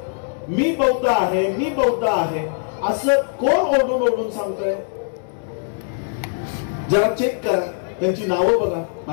मी बौद्ध आहे, मी बौद्ध आहे असं कोण ओढून ओढून सांगतोय? जरा चेक करा, त्यांची नावं बघा,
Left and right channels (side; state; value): right; silent; digital silence